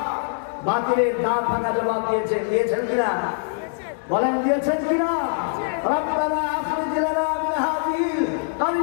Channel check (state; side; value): silent; right; digital silence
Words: বাতিলের দাঁত ভাঙা জবাব দিয়েছেন কিনা? বলেন দিয়েছেন কিনা? রব্বানা আখরিজ লানা মিন হাযিহিল